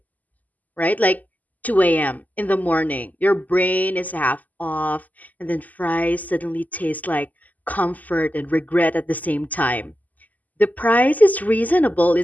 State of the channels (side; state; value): right; late; 0.079 ms